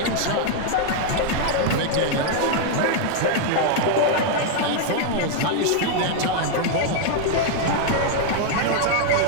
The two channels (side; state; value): both; different; correlation 0.00